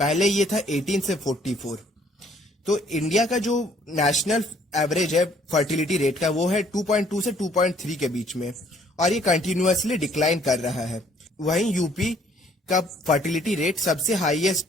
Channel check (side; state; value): both; normal; correlation 0.62